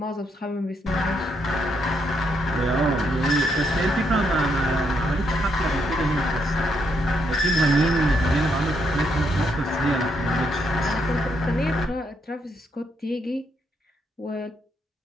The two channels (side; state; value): both; normal; correlation 0.77